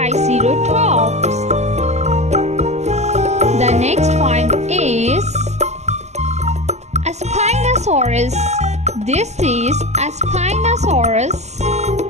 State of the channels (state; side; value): late; left; 0.33 ms